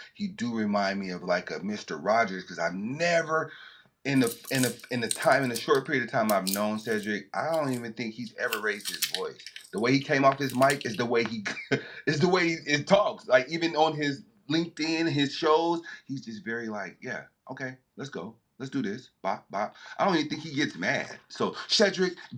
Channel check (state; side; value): identical; both; correlation 1.00